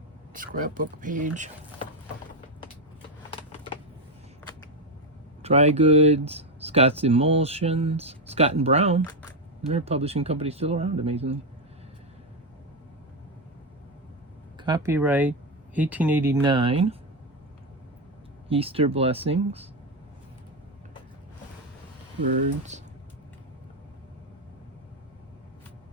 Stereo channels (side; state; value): both; normal; correlation 0.08